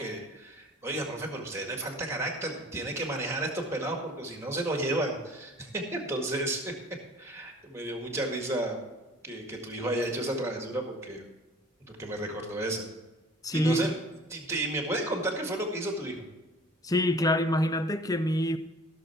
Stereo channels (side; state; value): both; normal; correlation 0.48